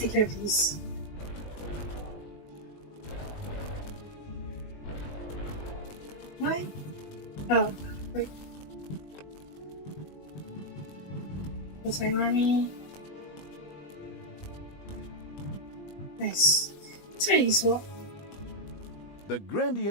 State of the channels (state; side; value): late; right; 20 ms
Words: care of these. Why? Oh, wait. That's my army. Nice. It's very useful. The